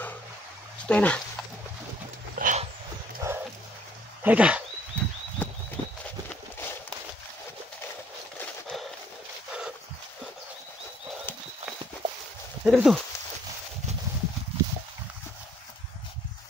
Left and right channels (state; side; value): normal; both; correlation 0.64